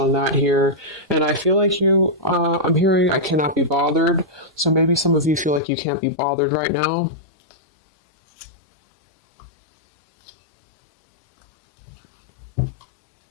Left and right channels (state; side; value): drops out; right; at 5.6 s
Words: that here. And I feel like I'm hearing I cannot be bothered. So maybe some of you feel like you can't be bothered right now.